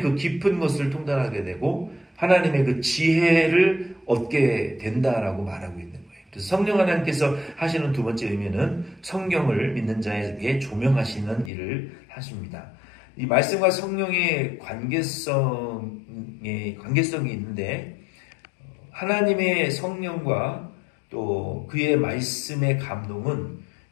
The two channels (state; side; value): drops out; right; at 11.5 s